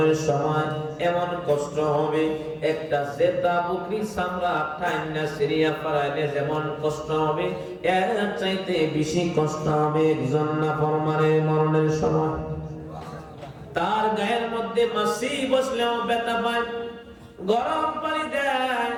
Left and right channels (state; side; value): identical; both; correlation 1.00